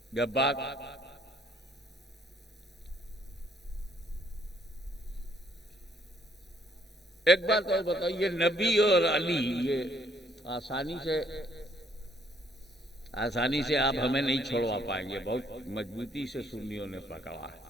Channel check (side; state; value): both; normal; correlation 0.67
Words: जब बात एक बात और बताओ, ये नबी और अली ये आसानी से आप हमें नहीं छोड़वा पाएंगे, बहुत मजबूती से सुन्नियों ने पकड़ा है।